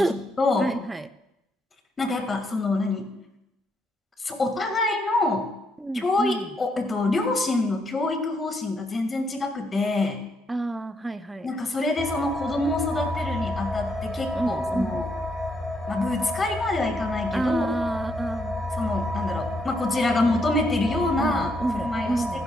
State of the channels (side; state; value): both; normal; correlation 0.76